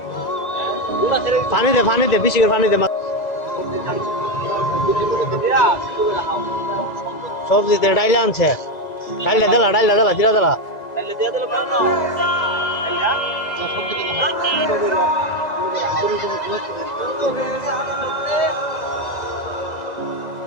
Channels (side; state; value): right; late; 2.0 ms